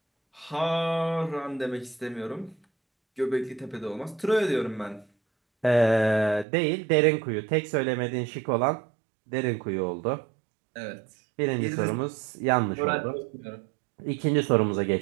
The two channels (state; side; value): drops out; left; at 6.5 s